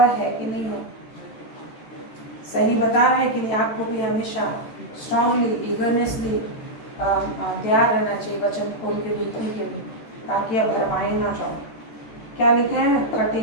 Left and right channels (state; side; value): late; right; 13 ms